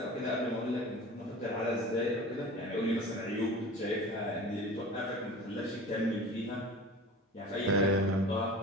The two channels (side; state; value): both; normal; correlation 0.37